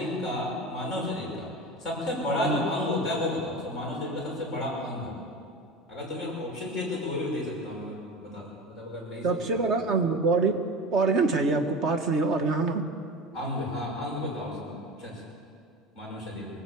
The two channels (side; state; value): both; normal; correlation 0.30